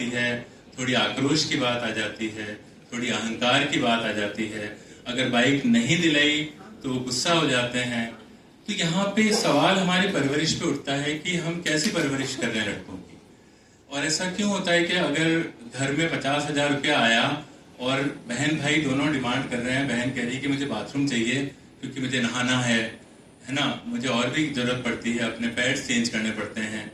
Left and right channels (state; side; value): identical; both; correlation 1.00